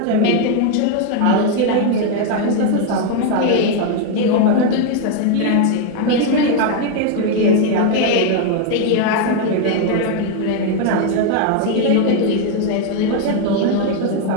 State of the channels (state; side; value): different; both; correlation 0.01